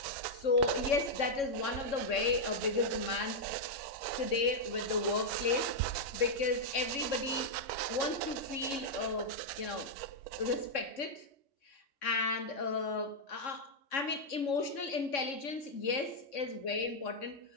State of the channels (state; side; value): late; right; 3.6 ms